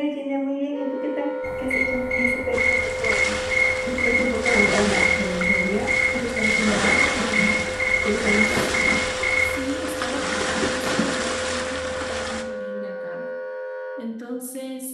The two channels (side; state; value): both; identical; correlation 1.00